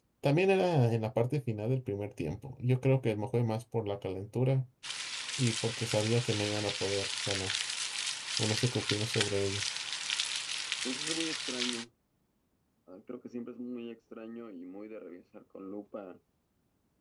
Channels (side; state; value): both; identical; correlation 1.00